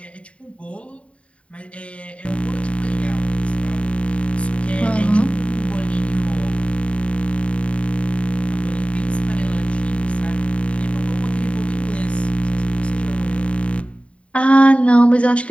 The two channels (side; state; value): right; late; 0.063 ms